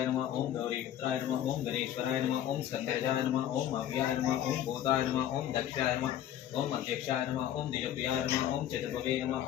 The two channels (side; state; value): right; quieter; 11.3 dB